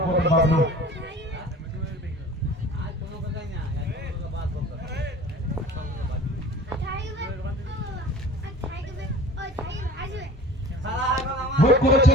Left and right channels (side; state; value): both; normal; correlation 0.43